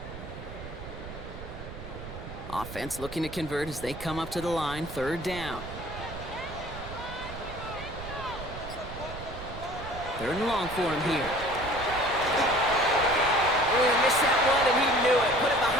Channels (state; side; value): noise; right; rumble, 11 dB below the sound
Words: Offense looking to convert as they come up to the line, third down. Third and long for him here. Oh, missed that one, and he knew it. Put it